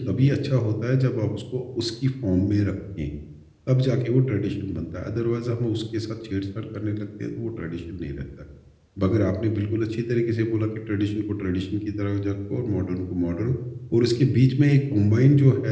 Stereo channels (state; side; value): identical; both; correlation 1.00